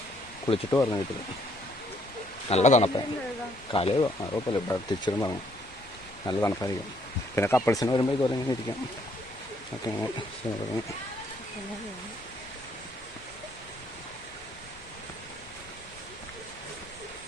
കുളിച്ചിട്ട് പറഞ്ഞു വീട്ടിൽ. നല്ല തണുപ്പാണ്. കാലയോ അറിയപ്പോലെ തിരിച്ചിരും പറഞ്ഞു. നല്ല തണുപ്പായിരിക്കും. പിന്നെ കപ്പിൾസിന് വരുമ്പോൾ ഇതുപോലെ ഇങ്ങനെ ഇരിക്കാം. ഒക്കെ ഇങ്ങനെ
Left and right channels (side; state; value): both; normal; correlation 0.67